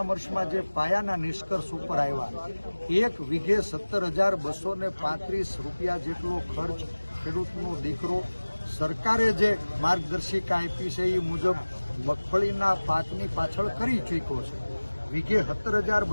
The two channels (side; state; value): both; inverted; correlation -1.00